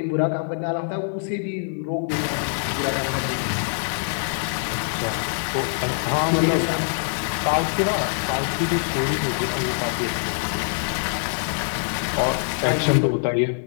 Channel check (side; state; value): right; silent; digital silence